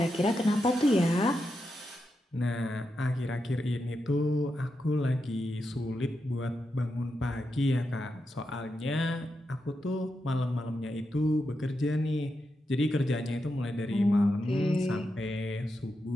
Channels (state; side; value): normal; both; correlation 0.87